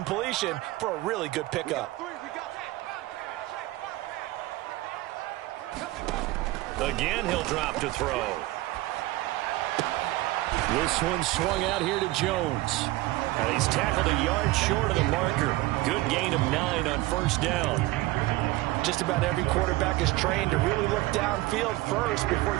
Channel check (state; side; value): quieter; left; 18.8 dB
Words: for a really good pickup. Again, he'll drop to throw. This one swung out here to Jones. And he's tackled a yard short of the marker. Good gain of 9 on 1st down. Just about every quarterback is trained to really look downfield first before